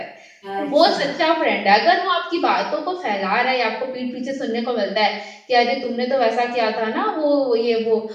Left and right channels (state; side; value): identical; both; correlation 1.00